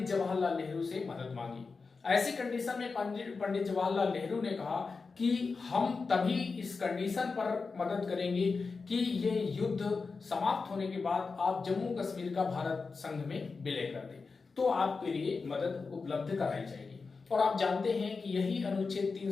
जवाहरलाल नेहरू से मदद मांगी। ऐसी कंडीशन में पंडित जवाहरलाल नेहरू ने कहा कि हम तभी इस कंडीशन पर मदद करेंगे कि ये युद्ध समाप्त होने के बाद आप जम्मू कश्मीर का भारत संघ में विलय कर दें, तो आपके लिए मदद उपलब्ध कराई जाएगी। और आप जानते हैं कि यही अनुच्छेद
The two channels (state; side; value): quieter; right; 4.5 dB